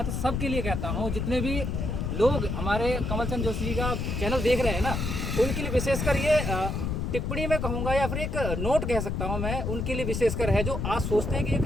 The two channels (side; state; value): left; noise; rumble, 2 dB below the sound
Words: सबके लिए कहता हूँ, जितने भी लोग हमारे कमलचंद जोशी जी का चैनल देख रहे हैं ना, उनके लिए विशेषकर ये टिप्पणी में कहूँगा या फिर एक नोट कह सकता हूँ मैं, उनके लिए विशेषकर है जो आज सोचते हैं कि ये